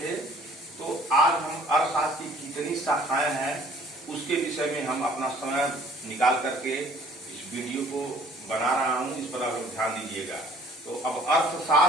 थे। तो आज हम अर्थशास्त्र की कितनी शाखाएं हैं उसके विषय में हम अपना समय निकाल करके इस वीडियो को बना रहा हूं, इस पर आप ध्यान दीजिएगा। तो अब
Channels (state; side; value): normal; both; correlation 0.55